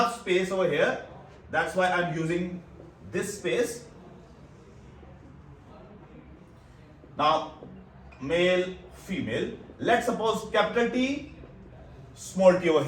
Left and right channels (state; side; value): identical; both; correlation 1.00